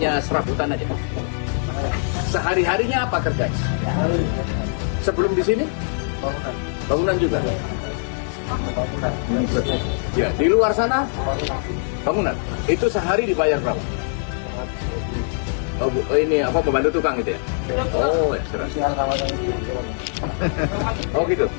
serabutan aja. Sehari-harinya apa kerjanya? Sebelum di sini? Bangunan. Bangunan juga. Bangunan. Ya, di luar sana bangunan. Itu sehari dibayar berapa? Oh, ini apa pembantu tukang gitu ya? Oh, ya, 100. Oh gitu.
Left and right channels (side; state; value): right; silent; digital silence